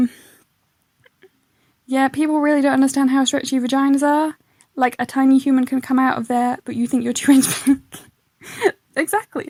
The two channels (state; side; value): identical; both; correlation 1.00